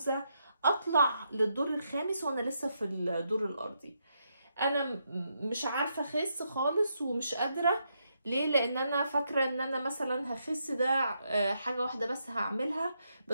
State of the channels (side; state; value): both; inverted; correlation -0.80